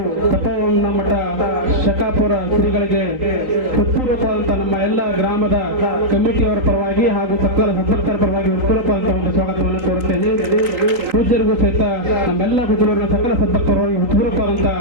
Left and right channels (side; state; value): left; late; 3.8 ms